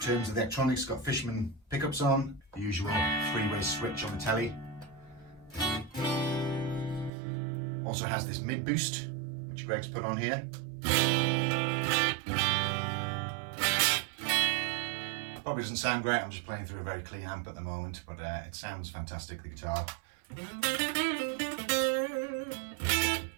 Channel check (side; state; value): left; drops out; at 7.1 s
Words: terms of the electronics, it's got Fishman pickups on, the usual three-way switch on the Telly. Also has this mid boost, which Greg's put on here. Probably doesn't sound great, I'm just playing through a very clean amp at the moment, but it sounds fantastic, the guitar.